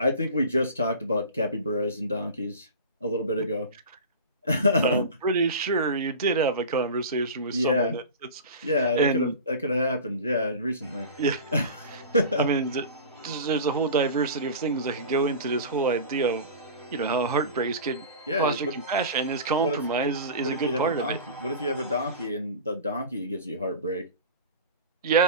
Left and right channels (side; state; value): both; inverted; correlation -0.32